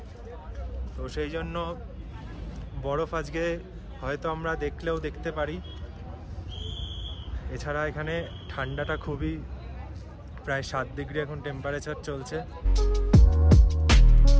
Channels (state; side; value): identical; both; correlation 1.00